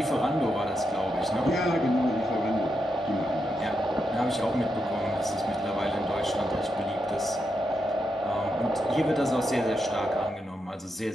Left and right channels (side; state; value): both; normal; correlation 0.84